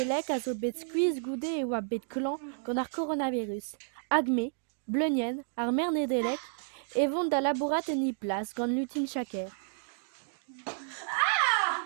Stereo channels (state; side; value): silent; left; digital silence